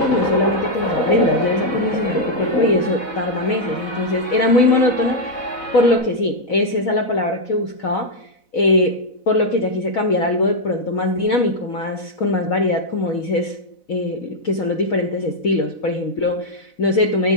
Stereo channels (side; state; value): right; late; 4.0 ms